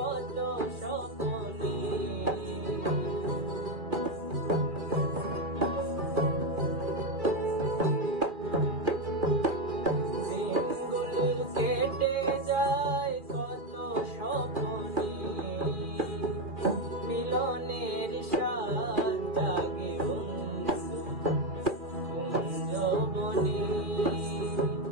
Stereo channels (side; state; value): left; late; 2.3 ms